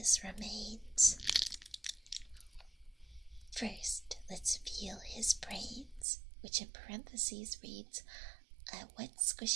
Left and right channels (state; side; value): drops out; left; at 6.1 s